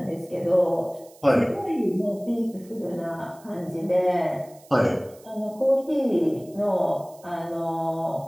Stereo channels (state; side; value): noise; right; hiss, 26 dB below the sound